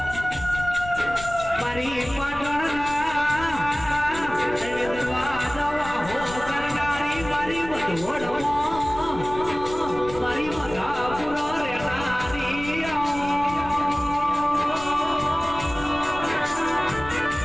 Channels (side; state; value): left; noise; rumble, 13 dB below the sound